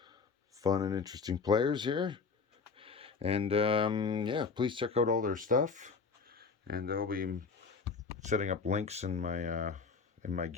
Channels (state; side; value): quieter; right; 4.9 dB